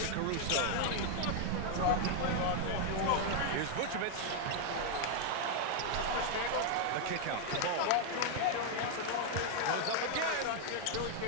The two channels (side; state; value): both; different; correlation 0.00